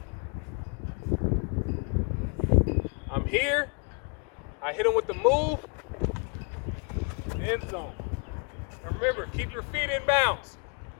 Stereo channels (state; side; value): quieter; right; 35.1 dB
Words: I'm here. I hit him with the move. End zone. Remember, keep your feet in bounds.